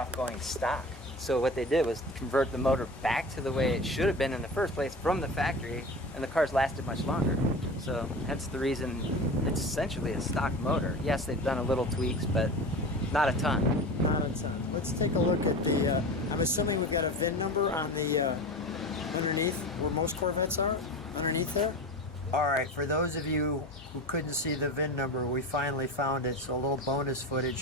going stock. So what they did was convert the motor back to the way it should have been in the first place from the factory, and the cars lasted much longer. So that's the reason it's essentially a stock motor. Yes, they've done a little tweaks, but not a ton. Not a ton. Let's take a look at the, I'm assuming we've got a VIN number on the, underneath where most Corvettes are, underneath there. All right, for those of you who couldn't see the VIN number, we finally found it. So a little bonus footage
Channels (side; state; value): both; normal; correlation 0.31